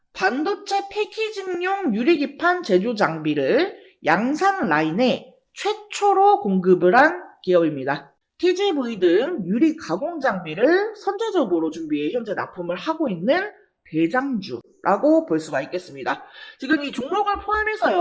반도체 패키징용 유리기판 제조 장비를 양산 라인에 최초로 공급을 한 기업입니다. TGV 등 유리 가공 장비를 선제적으로 준비해 현재 납품을 하고 있는 대장주라고 볼 수가 있겠습니다. 지금 이 종목을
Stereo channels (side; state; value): both; identical; correlation 1.00